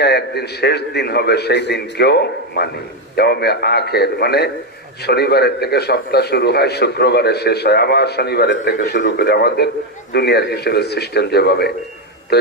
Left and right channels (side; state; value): both; normal; correlation 0.06